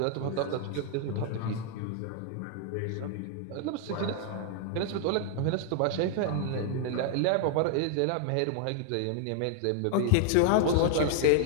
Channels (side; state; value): both; different; correlation 0.00